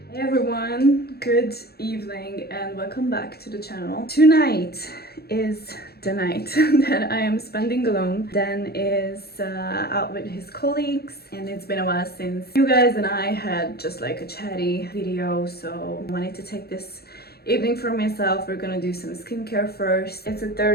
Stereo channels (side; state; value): right; late; 0.46 ms